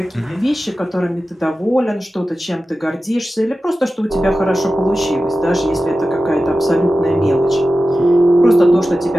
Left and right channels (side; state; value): both; normal; correlation 0.94